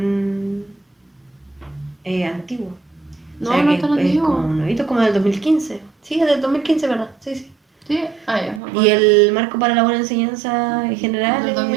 antiguo. No, O sea, no que es tan es antiguo. como nuevito, como del 2015. Sí, es del 2015, ¿verdad? Sí, sí. Sí, ya. Y el marco para la buena enseñanza en general Del es del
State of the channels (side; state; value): left; drops out; at 8.6 s